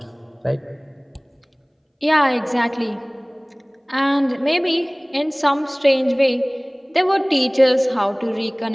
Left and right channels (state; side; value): identical; both; correlation 1.00